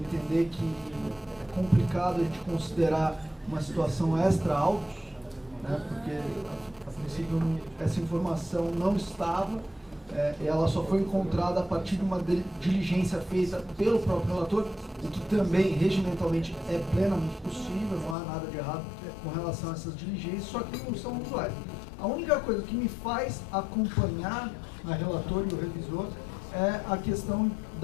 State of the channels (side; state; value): right; drops out; at 18.2 s